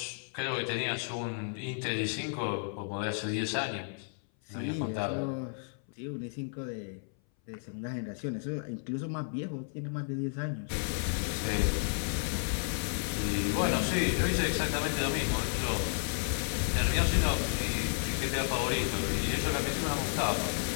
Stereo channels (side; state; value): right; silent; 56 dB below the other